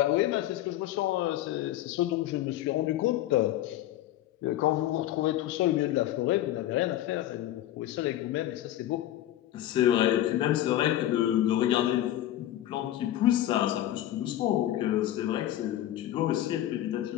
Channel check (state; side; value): quieter; right; 13.3 dB